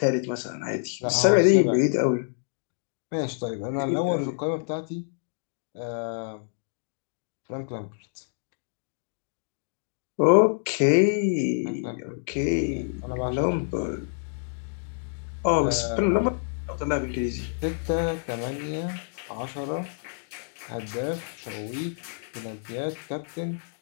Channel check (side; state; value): right; silent; digital silence